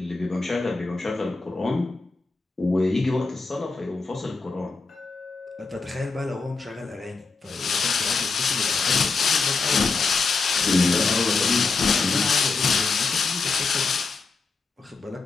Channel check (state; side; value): quieter; right; 4.3 dB